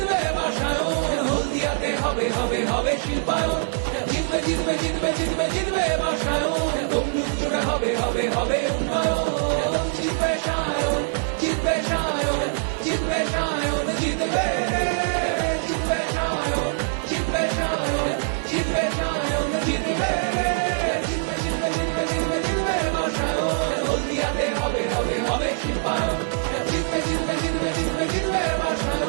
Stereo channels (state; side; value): silent; left; 63 dB below the other